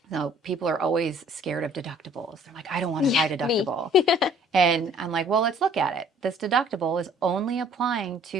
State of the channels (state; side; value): normal; both; correlation 0.56